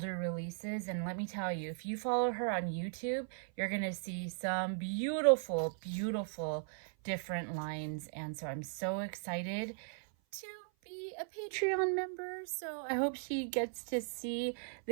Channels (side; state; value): left; silent; 53 dB below the other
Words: releases. And let me tell you, if you follow her on YouTube, you're gonna see some beautiful, beautiful different lines. And so I'm so excited to be a Patreon member, so I hope she gets to see